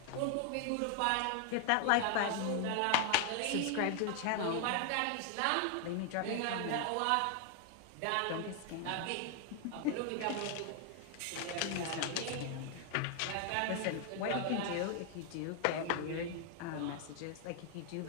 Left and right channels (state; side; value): different; both; correlation 0.00